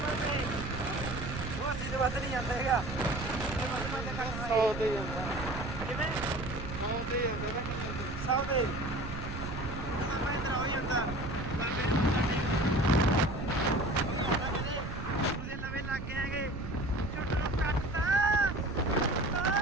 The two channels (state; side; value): noise; right; rumble, 7 dB below the sound